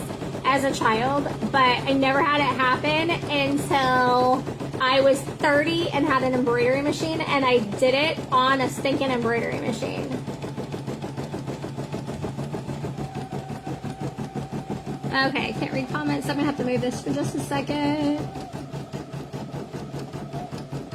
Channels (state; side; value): identical; both; correlation 1.00